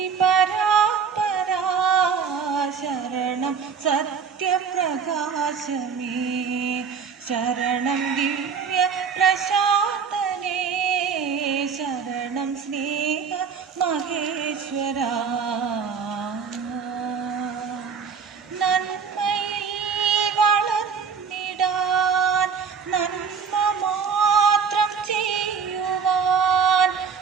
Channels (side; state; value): left; quieter; 6.2 dB